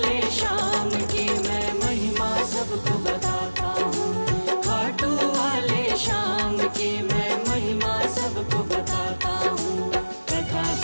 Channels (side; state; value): both; inverted; correlation -1.00